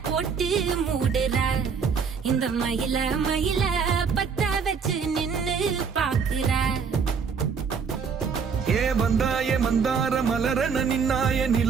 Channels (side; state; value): left; quieter; 6.0 dB